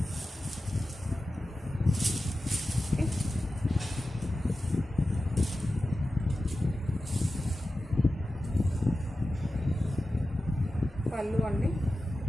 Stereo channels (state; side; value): normal; both; correlation 0.94